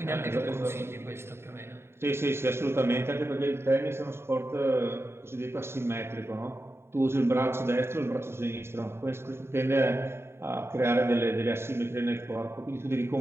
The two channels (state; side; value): late; left; 0.12 ms